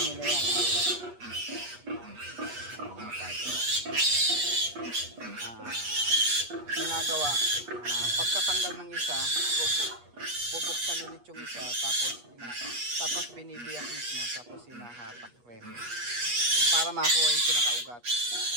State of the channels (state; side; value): late; left; 8.3 ms